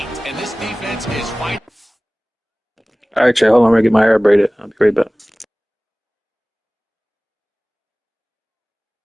And this defense is fighting. All right, Trey, hold on. I'm going to get my hair braided. I'll be right back.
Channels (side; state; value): both; normal; correlation 0.98